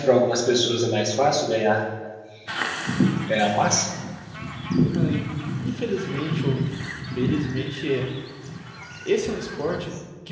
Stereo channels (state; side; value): identical; both; correlation 1.00